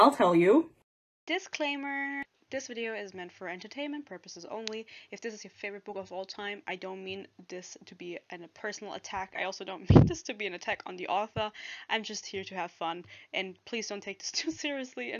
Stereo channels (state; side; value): identical; both; correlation 1.00